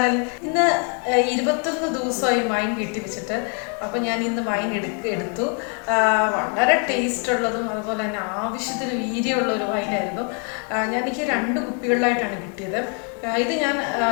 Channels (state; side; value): quieter; right; 39.8 dB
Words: ഇന്ന് 21 ദിവസമായി wine വീട്ടിൽ വെച്ചിട്ട്. അപ്പോൾ ഞാൻ ഇന്ന് വൈൻ എടുത്തു. വളരെ ടേസ്റ്റ് ഉള്ളതും അതുപോലെ തന്നെ ആവശ്യത്തിന് വീര്യമുള്ള ഒരു വൈനായിരുന്നു. എനിക്ക് 2 കുപ്പികളിലായിട്ടാണ് കിട്ടിയത്. ഇത് ഞാൻ